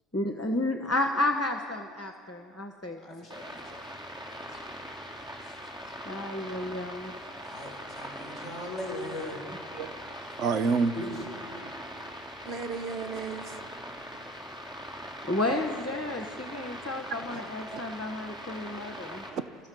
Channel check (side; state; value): both; normal; correlation 0.48